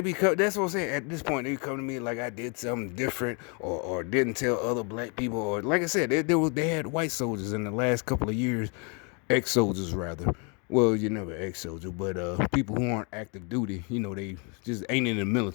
that's what I'm saying. At this point, they come to me like I did something different or didn't tell other black people. Or, like I said, they had white soldiers in the last couple of years, ex soldiers rather. Well, you never ex soldier, but people who aren't active duty, they just ain't in the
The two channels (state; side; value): quieter; right; 34.9 dB